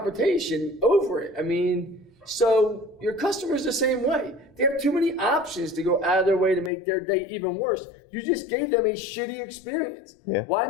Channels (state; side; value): drops out; right; at 6.7 s